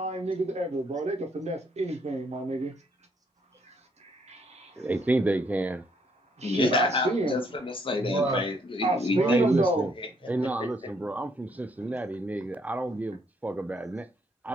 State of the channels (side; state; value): both; normal; correlation 0.70